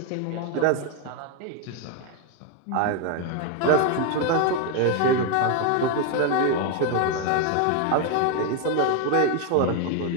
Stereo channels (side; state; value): both; different; correlation 0.01